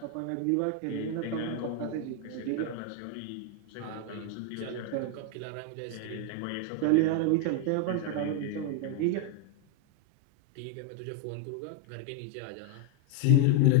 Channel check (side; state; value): both; different; correlation 0.01